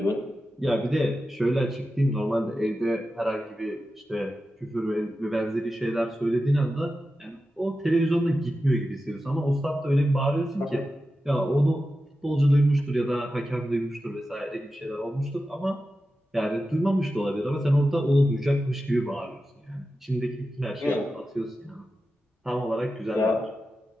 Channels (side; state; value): both; normal; correlation 0.92